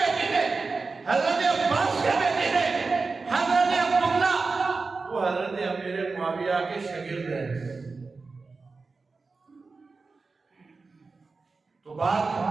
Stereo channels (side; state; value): left; quieter; 4.1 dB